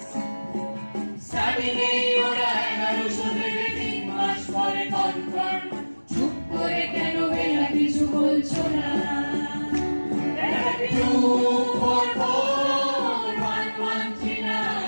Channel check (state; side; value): inverted; both; correlation -1.00